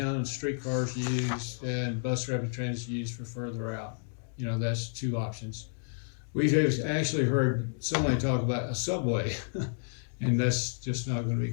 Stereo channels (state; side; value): silent; right; digital silence